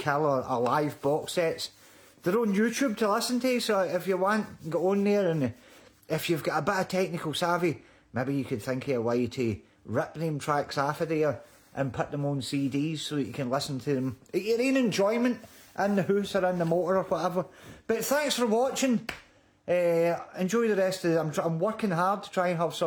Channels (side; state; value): both; identical; correlation 1.00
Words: or live box sets, they're on YouTube to listen to. So if you want, go on there, and if you've got a bit of technical savvy, maybe you could think of a way to rip them tracks off of there and put them on CDs so that you can listen to them at your own enjoyment in the house or in the motor or whatever. But thanks for watching. Enjoy the rest of it. I'm working hard to try and have